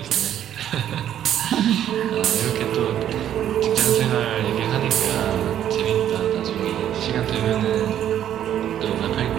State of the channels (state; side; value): quieter; left; 10.7 dB